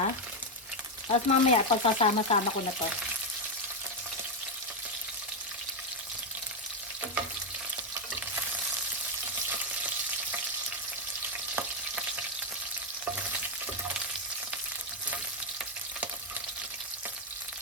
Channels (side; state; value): both; normal; correlation 0.04